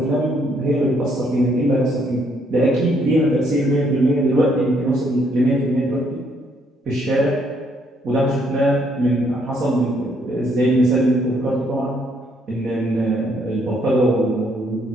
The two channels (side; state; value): both; normal; correlation 0.70